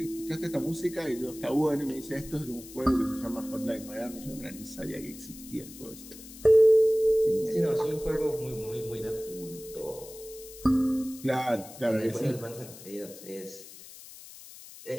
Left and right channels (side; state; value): left; noise; hiss, 16 dB below the sound